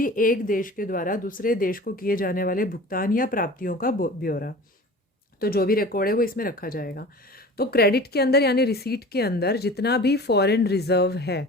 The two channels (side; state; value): both; normal; correlation 0.39